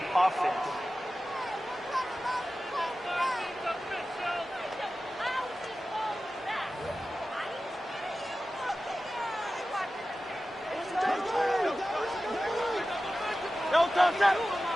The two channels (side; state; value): both; normal; correlation 0.95